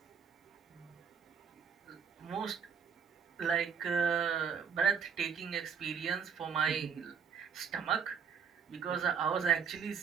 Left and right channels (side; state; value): left; quieter; 6.7 dB